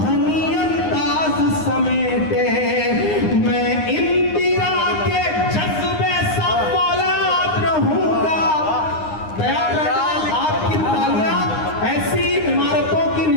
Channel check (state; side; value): late; right; 9.7 ms